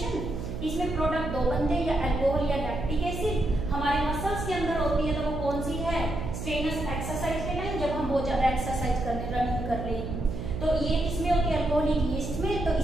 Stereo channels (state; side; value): noise; right; hum, 6 dB below the sound